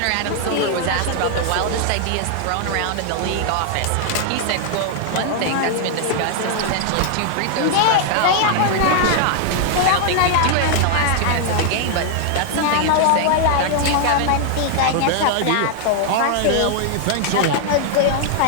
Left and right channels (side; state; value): both; different; correlation 0.00